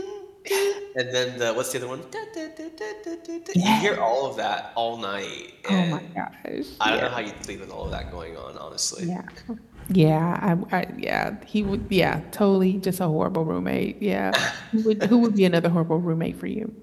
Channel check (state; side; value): identical; both; correlation 1.00